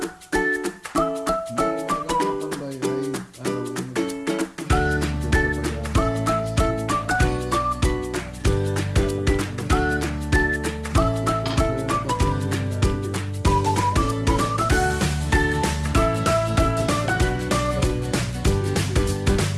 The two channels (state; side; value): identical; both; correlation 1.00